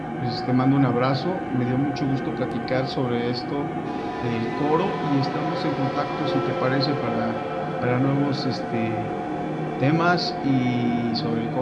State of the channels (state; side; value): identical; both; correlation 1.00